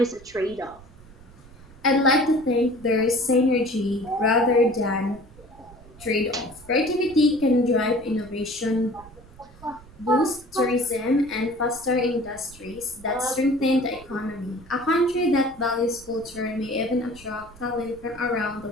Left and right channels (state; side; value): noise; right; rumble, 22 dB below the sound